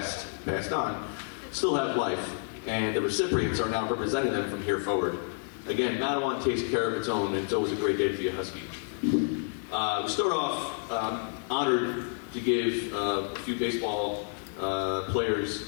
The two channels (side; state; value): right; silent; 58 dB below the other